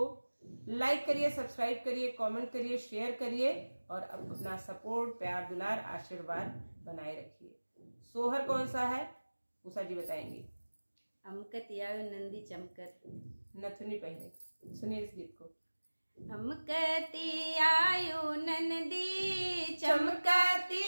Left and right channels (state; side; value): inverted; both; correlation -1.00